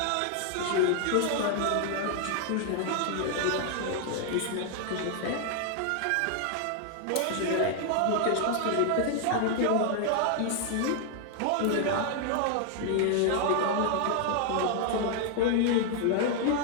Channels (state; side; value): different; both; correlation 0.00